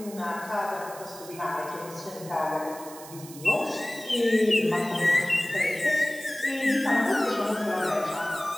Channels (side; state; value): right; noise; hiss, 16 dB below the sound